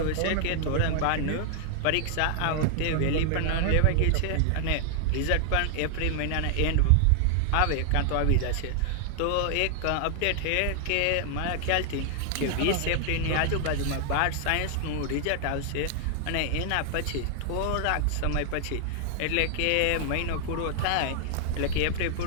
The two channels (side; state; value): both; different; correlation 0.00